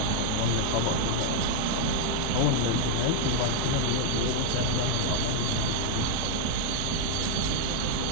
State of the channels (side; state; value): both; different; correlation 0.01